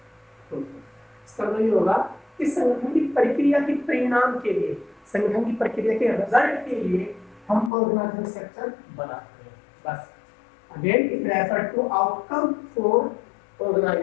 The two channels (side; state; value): right; drops out; at 7.7 s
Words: इसका मतलब ये होगा कि संगठन की प्रक्रिया के परिणाम के लिए, संगठन की प्रक्रिया के रिजल्ट के लिए हम ऑर्गेनाइजेशन स्ट्रक्चर बनाते हैं। बस again it refer to outcome for